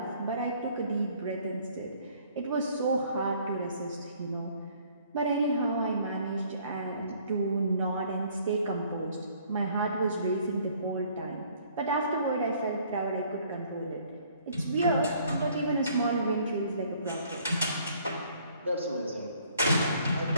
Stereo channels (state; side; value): inverted; both; correlation -0.60